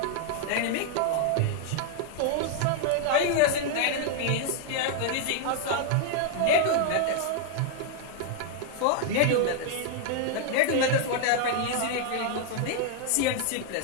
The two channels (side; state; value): both; different; correlation 0.00